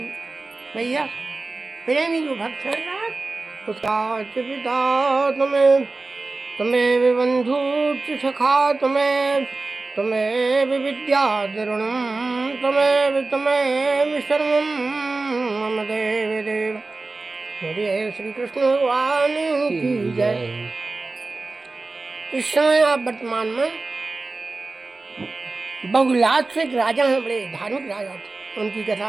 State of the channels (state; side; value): quieter; left; 3.5 dB